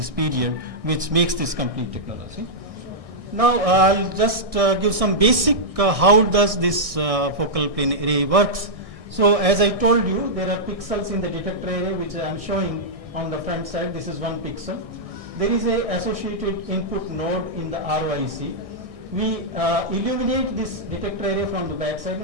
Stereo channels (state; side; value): late; left; 1.6 ms